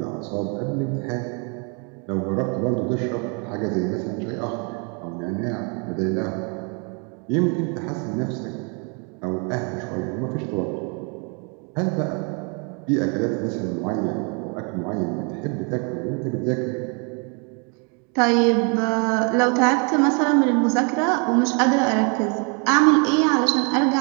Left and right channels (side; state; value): left; quieter; 35.9 dB